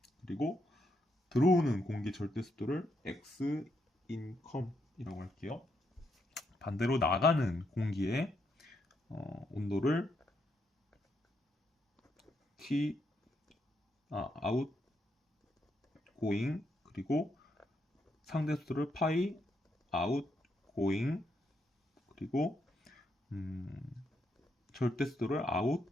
그리고 들어오는 공기 절대 습도를 x in com 이라고 할게요. 반대로 나가는 공기의 온도를 T outgoing 그리고 상대 습도를 pi outgoing 그리고 절대 습도를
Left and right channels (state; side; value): normal; both; correlation 0.79